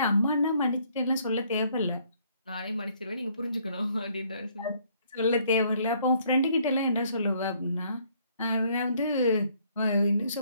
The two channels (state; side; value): inverted; both; correlation -0.65